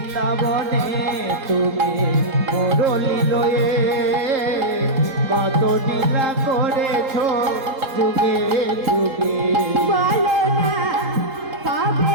তুমি মুরলী লয়ে কত লীলা করেছ যুগে যুগে বলো না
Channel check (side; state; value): left; late; 4.3 ms